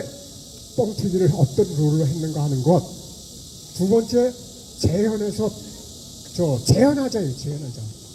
뻥튀기를 어떤 룰로 했는가 하는 것. 2번째, 재현해서 재현하자예요. 재현하자.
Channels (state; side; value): identical; both; correlation 1.00